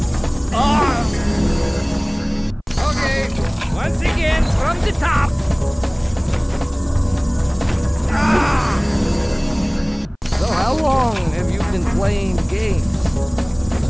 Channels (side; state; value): both; identical; correlation 1.00